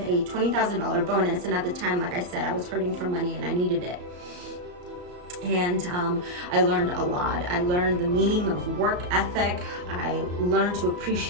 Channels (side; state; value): left; late; 34 ms